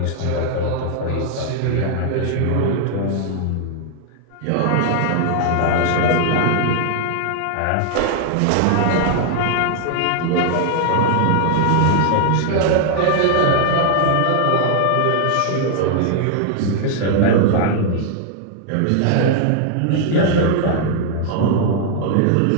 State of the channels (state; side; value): different; both; correlation 0.00